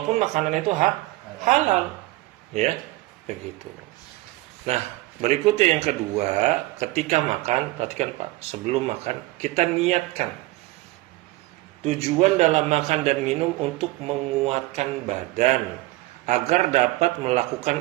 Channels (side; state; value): left; quieter; 19.5 dB